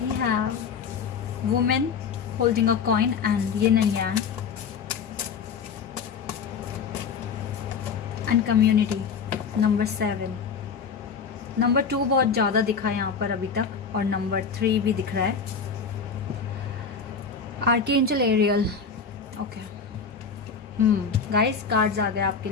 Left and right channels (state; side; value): quieter; right; 5.8 dB